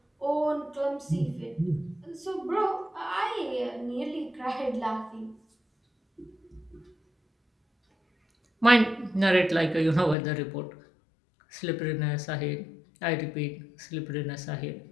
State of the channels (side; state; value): right; drops out; at 10.2 s